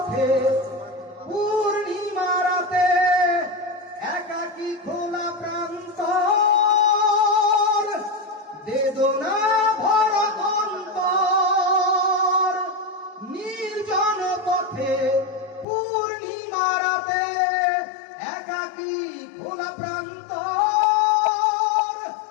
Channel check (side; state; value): right; drops out; at 15.7 s